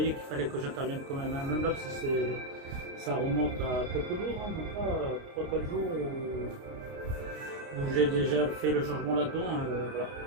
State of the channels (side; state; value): left; late; 29 ms